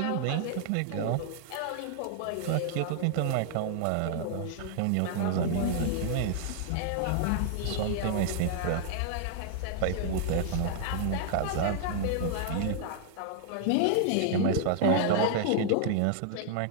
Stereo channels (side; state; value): both; different; correlation -0.01